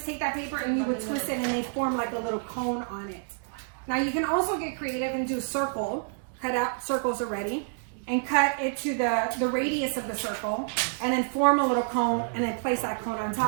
take that paper and you would twist it and they form like a little cone on it. Now you can also get creative and do a circle, cut out circles already, and cut it to the radius of the circle, and then form a little cone, and then place that cone on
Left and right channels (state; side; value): silent; left; digital silence